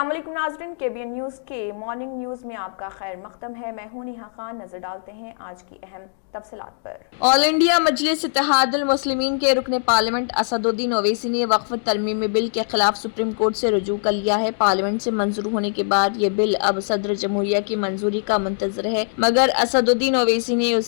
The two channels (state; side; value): silent; right; digital silence